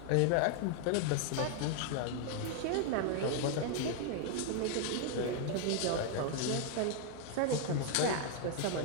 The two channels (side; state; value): both; different; correlation 0.00